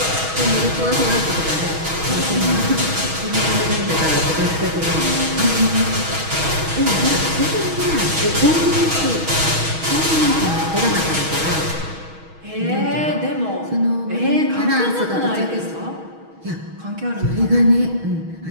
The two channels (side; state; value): left; late; 6.3 ms